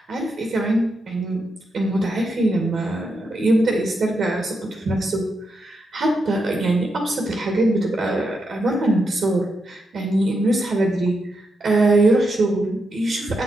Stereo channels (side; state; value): both; normal; correlation 0.84